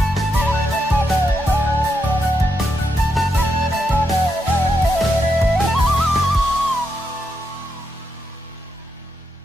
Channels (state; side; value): normal; both; correlation 0.82